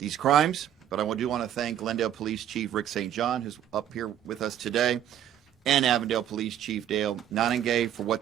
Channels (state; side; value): quieter; left; 10.7 dB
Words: crimes. But I do want to thank Glendale Police Chief Rick St. John, who's up here with us today, and Avondale Police Chief Dale Nanagay for what